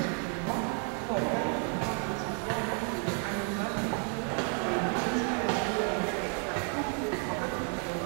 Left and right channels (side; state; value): left; quieter; 38.8 dB